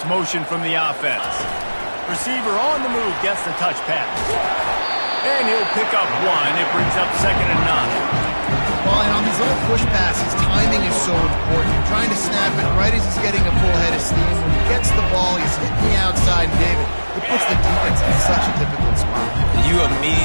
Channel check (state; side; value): inverted; both; correlation -1.00